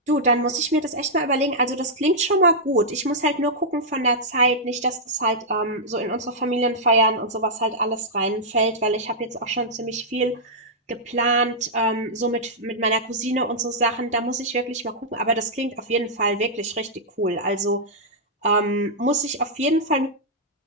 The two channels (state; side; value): normal; both; correlation -0.09